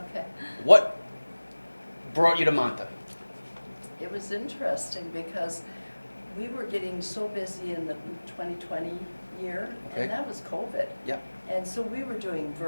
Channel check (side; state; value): both; inverted; correlation -1.00